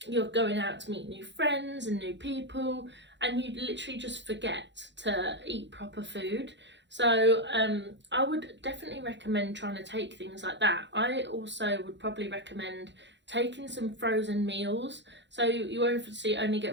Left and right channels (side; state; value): left; late; 0.52 ms